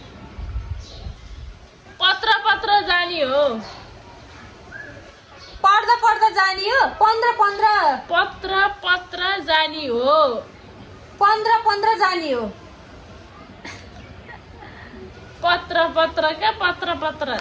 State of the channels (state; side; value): identical; both; correlation 1.00